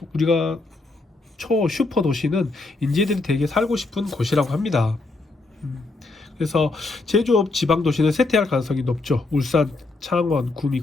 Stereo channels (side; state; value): right; quieter; 3.4 dB